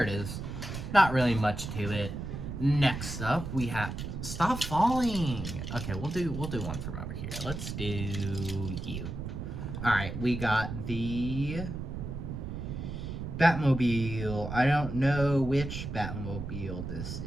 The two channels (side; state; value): right; noise; rumble, 6 dB below the sound